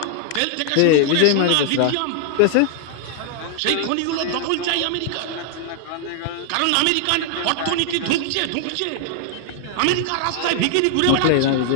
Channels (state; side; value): different; both; correlation 0.00